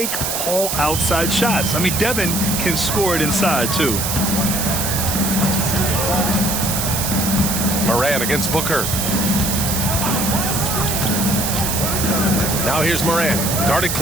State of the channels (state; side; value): noise; right; hiss, 1 dB below the sound